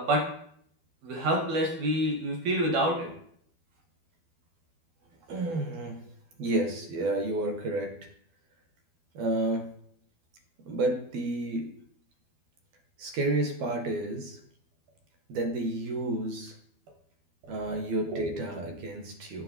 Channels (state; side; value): late; left; 12 ms